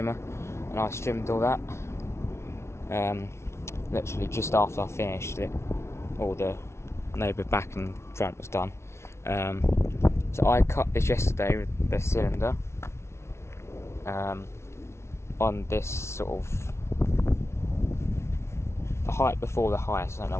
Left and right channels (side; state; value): right; late; 0.13 ms